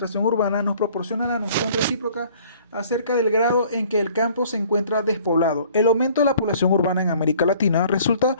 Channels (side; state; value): both; inverted; correlation -0.55